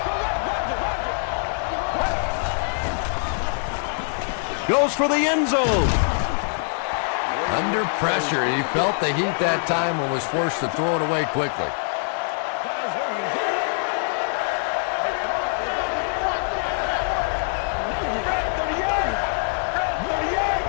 Goes for the end zone. Under pressure. He felt the heat that time and was forced to throw it away quickly.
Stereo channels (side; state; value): right; silent; 63 dB below the other